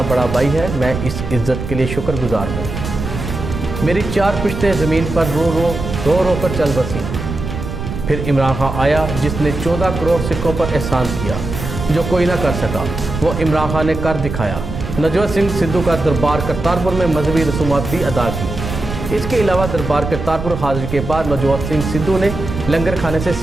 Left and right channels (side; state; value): right; noise; rumble, 6 dB below the sound